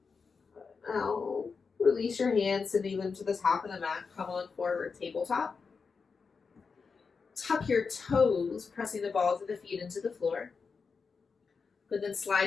Now, release your hands, sending them to the top of the mat. Come on forward, tabletop. Tuck your toes, pressing the balls of the feet into the floor. But then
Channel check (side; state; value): right; quieter; 5.1 dB